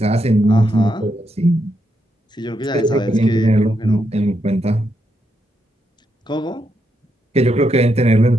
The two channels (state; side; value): normal; both; correlation 0.81